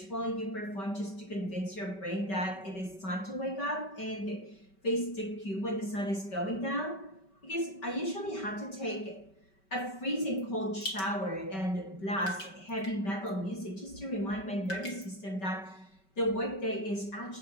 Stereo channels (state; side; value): late; right; 5.2 ms